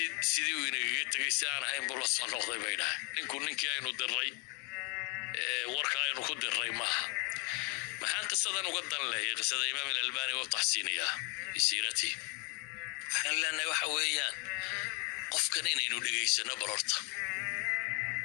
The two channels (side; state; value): right; quieter; 33.6 dB